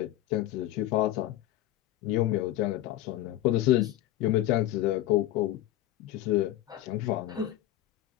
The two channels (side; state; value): right; quieter; 14.1 dB